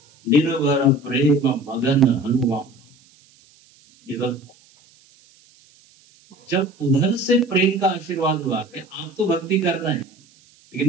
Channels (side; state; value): right; noise; hiss, 30 dB below the sound